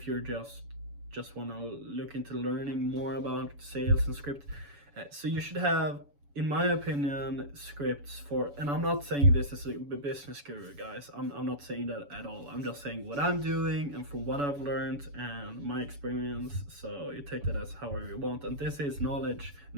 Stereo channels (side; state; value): left; late; 7.0 ms